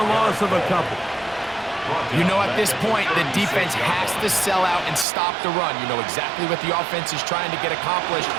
loss of a couple. You know, at this point, the defense has to sell out and stop the run. You know exactly what the offense is trying to get accomplished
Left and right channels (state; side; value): drops out; left; at 5.1 s